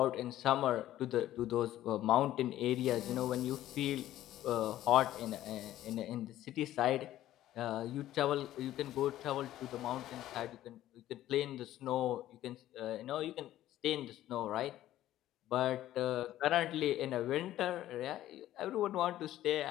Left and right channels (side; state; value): right; quieter; 13.6 dB